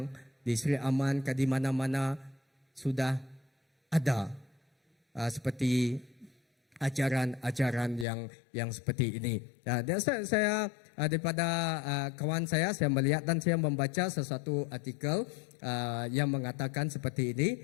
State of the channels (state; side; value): drops out; right; at 8.1 s